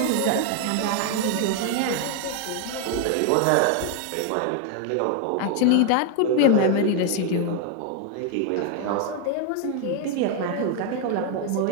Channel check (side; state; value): both; different; correlation 0.01